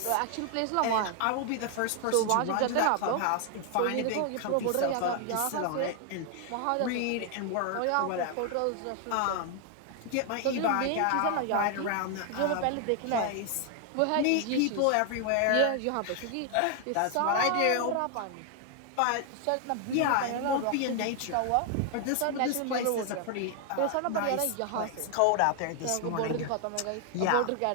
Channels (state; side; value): different; both; correlation 0.00